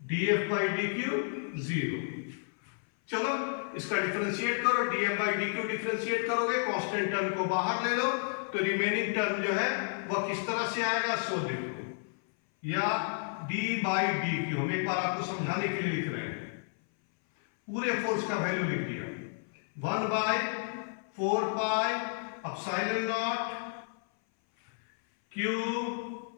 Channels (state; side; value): silent; right; 55 dB below the other